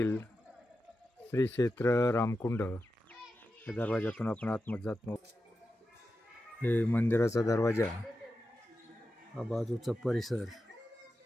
श्री क्षेत्र रामकुंड या दरवाजातून आपण आतमध्ये जातो। हे मंदिराचा दरवाजा, हा बाजूचा परिसर।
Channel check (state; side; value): normal; both; correlation 0.91